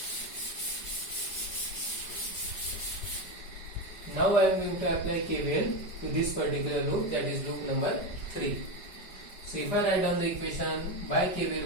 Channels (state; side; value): late; right; 5.1 ms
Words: Now I am going to apply KVL to this particular loop, that is loop number 3. So if I write down the equation by